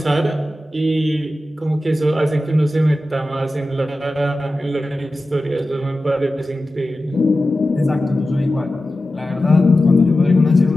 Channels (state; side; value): normal; both; correlation 0.94